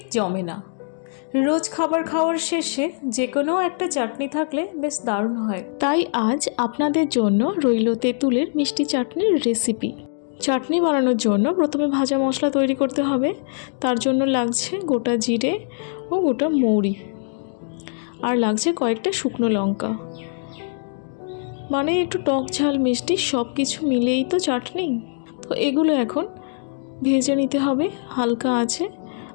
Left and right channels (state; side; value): silent; right; digital silence